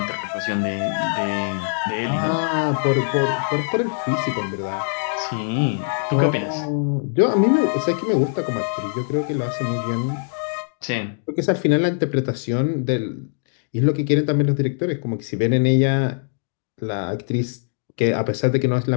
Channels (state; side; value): silent; right; digital silence